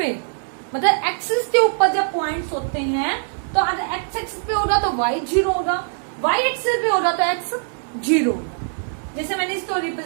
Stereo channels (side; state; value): left; silent; 60 dB below the other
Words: मतलब एक्सिस के ऊपर जब पॉइंट्स होते हैं, तो अगर x एक्सिस पे होगा तो y 0 होगा, y एक्सिस पे होगा तो x 0 होगा। जैसे मैंने इसको